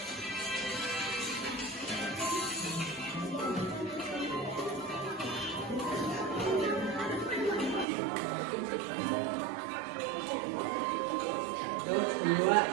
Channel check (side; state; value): left; drops out; at 7.9 s